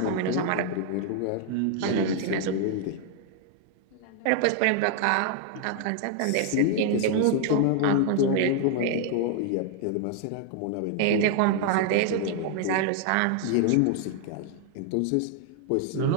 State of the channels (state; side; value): different; both; correlation 0.00